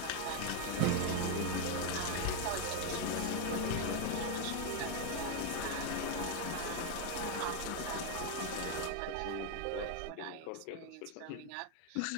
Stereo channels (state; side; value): different; both; correlation 0.01